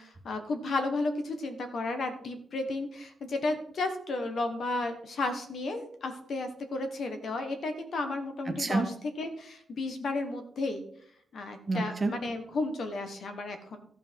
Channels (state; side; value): normal; both; correlation 0.81